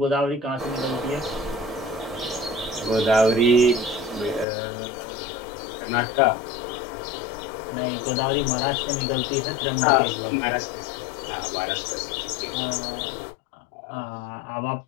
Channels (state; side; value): drops out; right; at 4.5 s